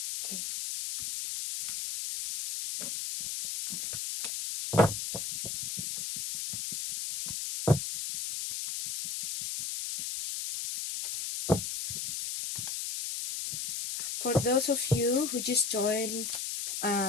Okay. For those of you who just joined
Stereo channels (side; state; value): left; noise; hiss, 2 dB below the sound